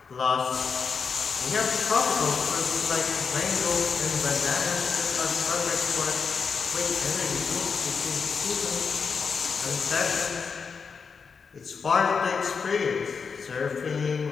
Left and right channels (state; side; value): quieter; right; 5.6 dB